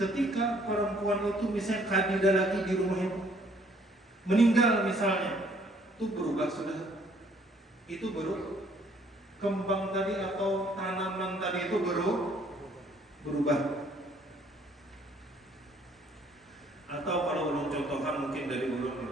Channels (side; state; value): both; normal; correlation 0.62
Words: perempuan itu misalnya kadida lagi di rumah itu, meninggal misalnya, itu berubah sudah. Itu baru kembang tadi atau tanaman tadi itu berubah. Atau kalau ulun contohkan mungkin dari